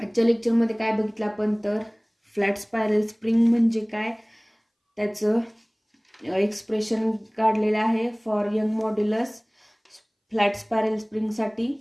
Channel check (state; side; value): identical; both; correlation 1.00